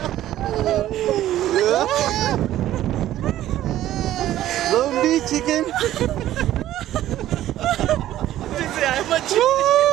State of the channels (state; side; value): quieter; left; 13.4 dB